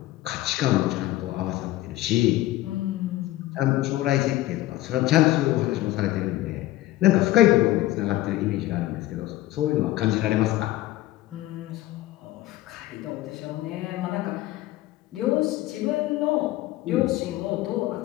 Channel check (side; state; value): right; quieter; 16.3 dB